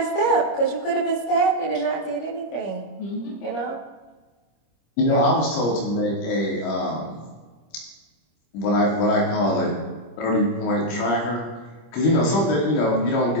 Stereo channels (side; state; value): right; late; 25 ms